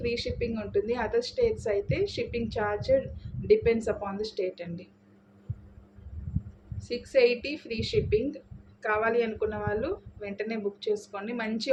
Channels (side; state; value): both; identical; correlation 1.00